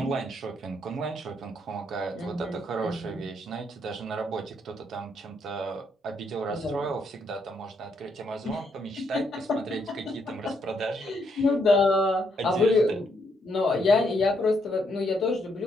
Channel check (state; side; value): normal; both; correlation 0.74